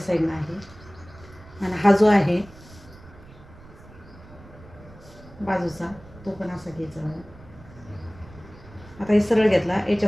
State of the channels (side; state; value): right; noise; rumble, 21 dB below the sound